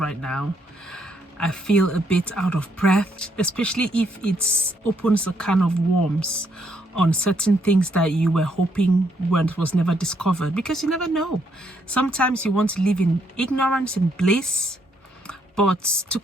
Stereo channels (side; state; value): both; normal; correlation 0.73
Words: now. I feel a bit out of breath, especially if it opens a can of worms on certain things that you were hoping was never discovered, because you never know. Sometimes you want to live in ignorance and bliss. But to